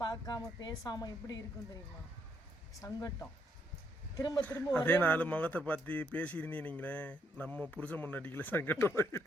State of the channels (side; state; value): both; normal; correlation 0.74